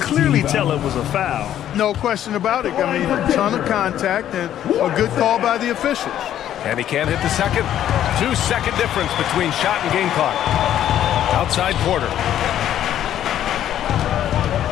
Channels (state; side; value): quieter; right; 11.2 dB